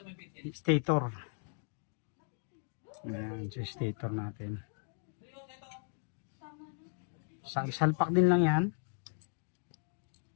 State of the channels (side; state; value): right; silent; 54 dB below the other